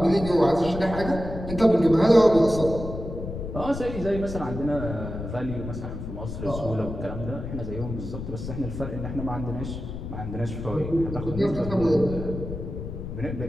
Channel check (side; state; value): left; noise; rumble, 7 dB below the sound